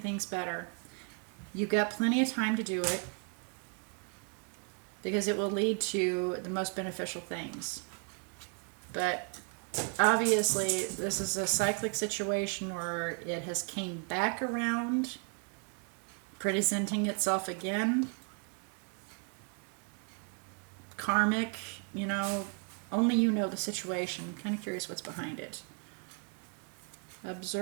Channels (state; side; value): quieter; left; 37.0 dB